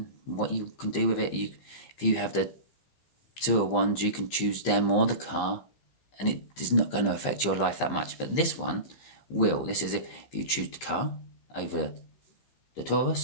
what you can do with it. If you have the Two of Wands, you can choose them or the car, and it is not going to affect your life that much. But this one will. This is if you choose the car over the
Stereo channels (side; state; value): right; late; 15 ms